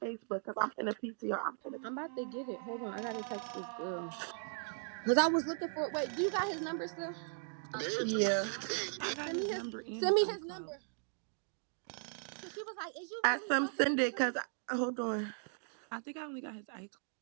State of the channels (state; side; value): silent; left; 53 dB below the other